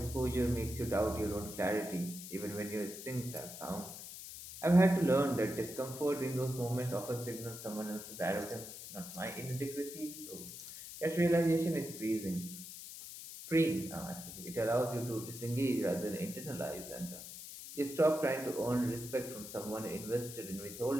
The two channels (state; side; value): noise; left; hiss, 11 dB below the sound